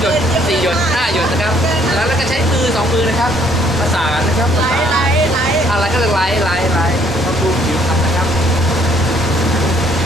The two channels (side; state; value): both; normal; correlation 0.64